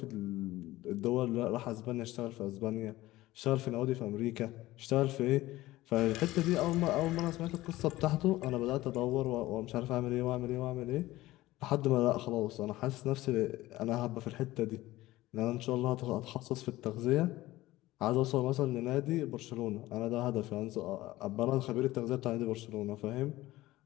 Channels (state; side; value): quieter; right; 17.2 dB